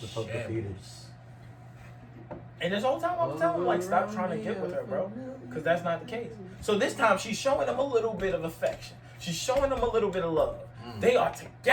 supposed to feed shambles. And this whole time I was telling him, like, stop trying to get with her, bro. Because that's not the case. So this time she's showing him a little bit of affection. She's showing him a little bit of love. They are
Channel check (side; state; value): both; identical; correlation 1.00